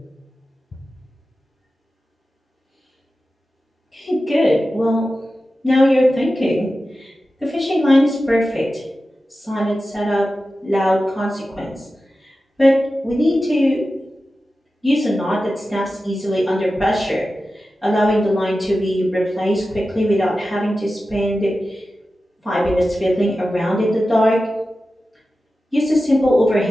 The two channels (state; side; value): normal; both; correlation 0.93